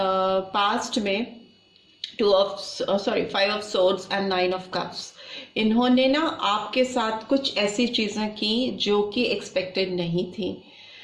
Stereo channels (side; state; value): both; identical; correlation 1.00